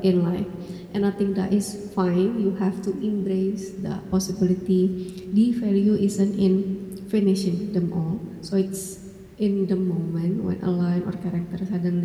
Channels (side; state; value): both; identical; correlation 1.00